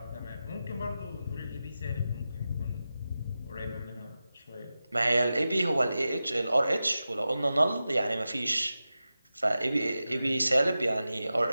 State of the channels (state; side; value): inverted; both; correlation -0.93